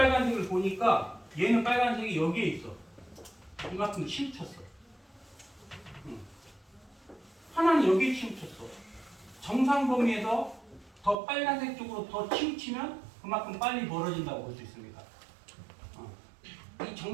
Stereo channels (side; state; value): left; drops out; at 11.2 s